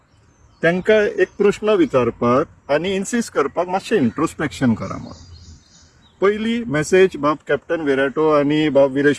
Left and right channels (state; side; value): identical; both; correlation 1.00